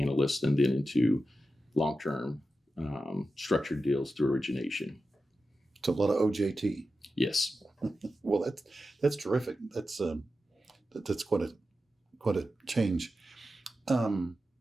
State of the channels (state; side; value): normal; both; correlation 0.91